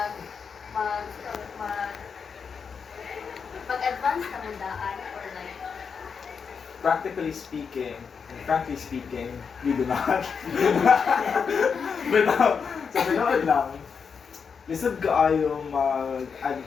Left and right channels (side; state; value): right; quieter; 6.1 dB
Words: mag-advance na mundaan or like, Practically speaking, and frankly speaking, we do not. But sa pinood lang, lisod kaayong